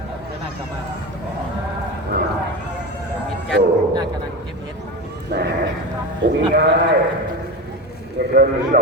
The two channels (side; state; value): both; normal; correlation 0.23